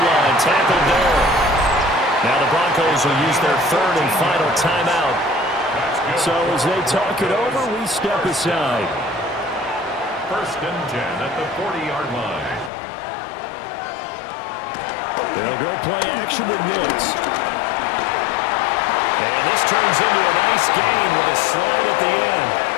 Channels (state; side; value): drops out; right; at 12.7 s